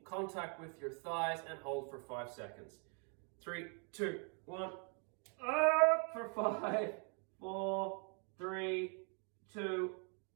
contact with your thighs, and hold for 5 seconds. 3, 2, 1. Up for 5, 4, 3, 2,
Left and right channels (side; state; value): left; quieter; 38.5 dB